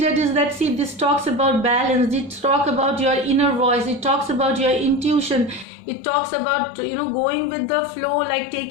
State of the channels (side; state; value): right; drops out; at 5.7 s